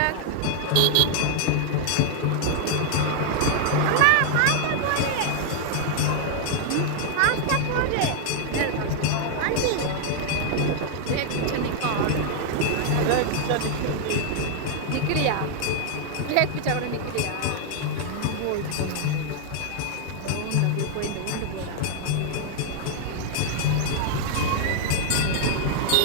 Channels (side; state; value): both; different; correlation 0.00